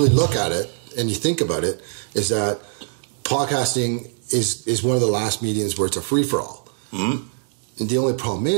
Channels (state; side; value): silent; left; 64 dB below the other